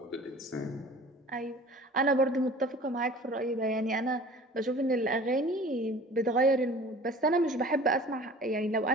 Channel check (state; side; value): normal; both; correlation 0.45